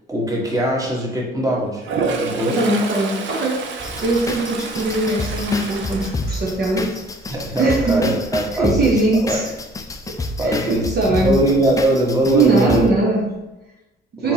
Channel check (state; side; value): normal; both; correlation 0.54